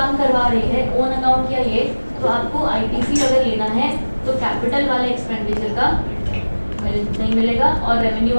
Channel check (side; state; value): both; inverted; correlation -1.00